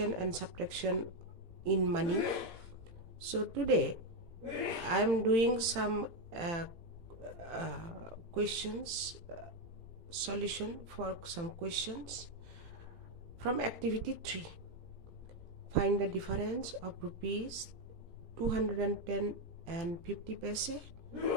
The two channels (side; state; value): left; late; 18 ms